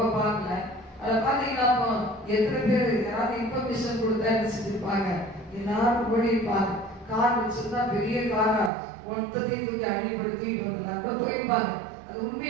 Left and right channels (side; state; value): left; drops out; at 8.7 s